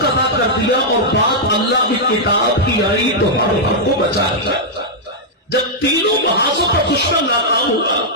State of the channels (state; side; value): normal; both; correlation -0.06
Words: ادا کر دیا اور بات اللہ کی کتاب کی آئی تو ہر حق کو بچا دیا جب تینوں محاذوں پر دشمن ناکام